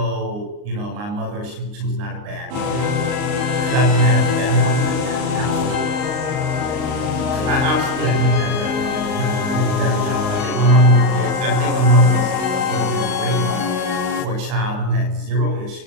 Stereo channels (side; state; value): left; late; 39 ms